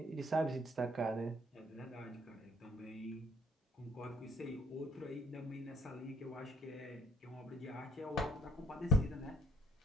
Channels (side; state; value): both; normal; correlation 0.62